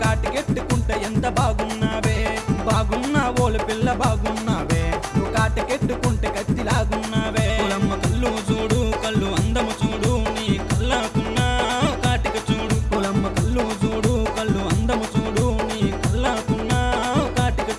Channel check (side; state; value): both; identical; correlation 1.00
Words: కాటికెట్టుకుంటే ఎంత బాగున్నావే బాగున్నా ఓలు పిల్ల బాగున్నావే నువ్వు కాటికెట్టుకుంటే కత్తిలాగున్నావే పొలమ్మ కళ్ళు చూడు కళ్ళు అందము చూడు నీ కళ్ళకున్న కాటిక చూడు పొలమ్మ కళ్ళు చూడు కళ్ళు అందము చూడు నీ కళ్ళకున్న కాటిక